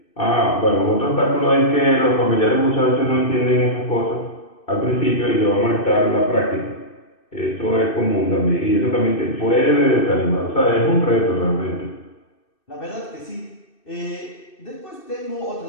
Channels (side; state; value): right; late; 2.6 ms